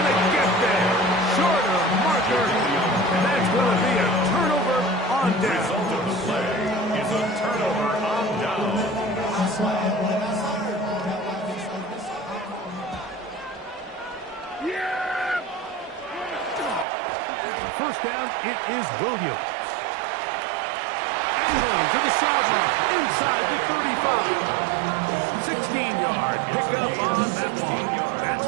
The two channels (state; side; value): drops out; left; at 16.9 s